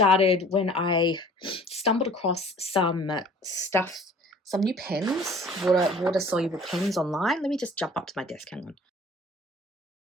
when I stumbled across some stuff, some new pens, water-soluble pens online. Let me just jump up to my desk, hang on.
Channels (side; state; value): both; normal; correlation 0.49